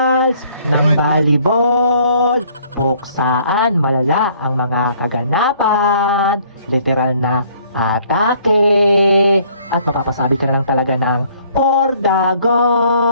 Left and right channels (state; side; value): inverted; both; correlation -0.61